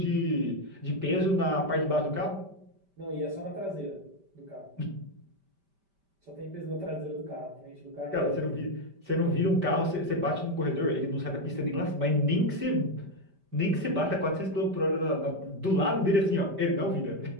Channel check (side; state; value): left; late; 5.1 ms